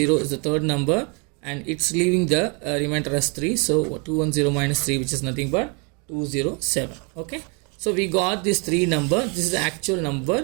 is the third number and it's leaving the remainder as 3. So 210 minus 3, which is nothing but 207. Okay. So we got this 3 number. This is the actual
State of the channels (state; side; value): quieter; left; 33.9 dB